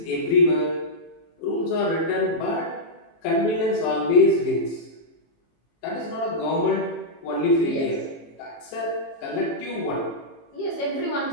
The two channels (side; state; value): right; late; 18 ms